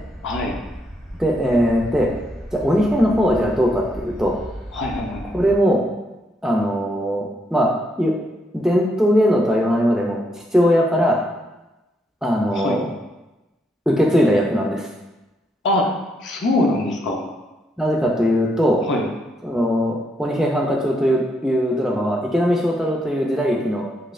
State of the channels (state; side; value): normal; both; correlation 0.77